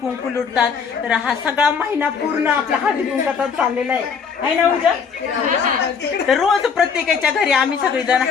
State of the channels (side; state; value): right; quieter; 6.2 dB